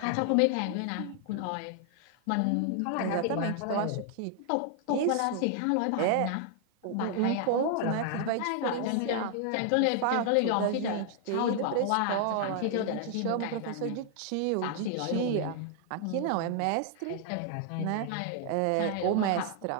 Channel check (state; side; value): different; both; correlation 0.00